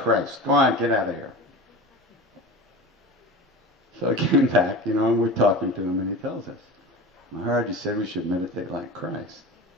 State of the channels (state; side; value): normal; both; correlation 0.32